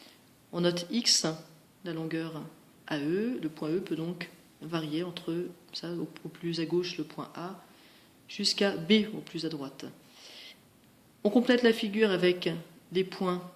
On note X, la longueur AE. Le point E peut donc varier entre ça, au plus à gauche le point A jusqu'à B au plus à droite. On complète la figure avec des points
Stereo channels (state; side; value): identical; both; correlation 1.00